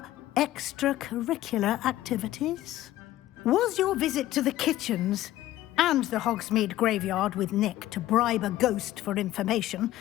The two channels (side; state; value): right; quieter; 14.7 dB